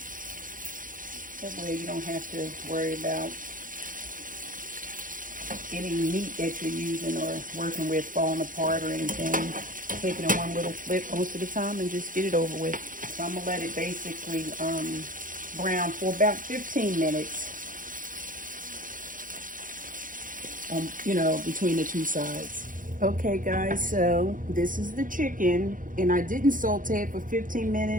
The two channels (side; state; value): left; late; 0.39 ms